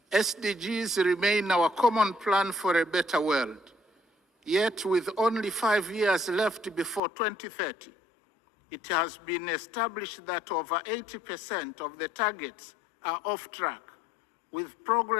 SDGs remain our common plan for a better world. Yet, with only 5 years left before 2030, it has been established that over 80% of the targets are off track, with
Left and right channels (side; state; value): right; drops out; at 7.0 s